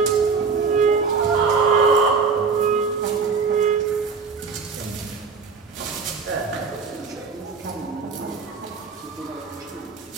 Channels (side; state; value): left; quieter; 5.1 dB